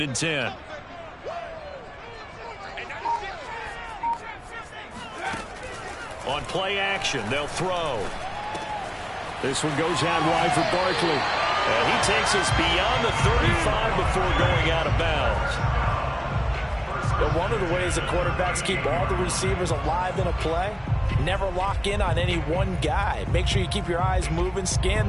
and 10. On play action, they'll throw. This one goes out wide for Barkley. And he takes us beyond the 35 before going out of bounds. But one of the ways the quarterbacks keep all the receivers alive in a play, never lock in on any one guy. Make sure you keep your eyes moving, scan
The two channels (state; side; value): identical; both; correlation 1.00